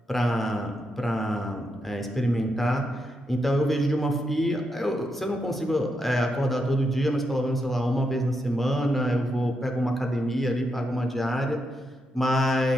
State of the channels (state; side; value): normal; both; correlation 0.83